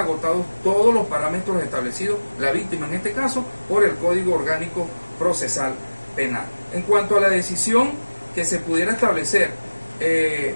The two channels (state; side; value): inverted; both; correlation -1.00